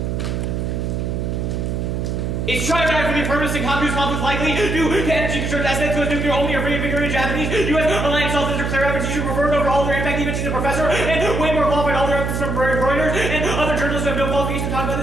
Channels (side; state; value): right; noise; hum, 1 dB below the sound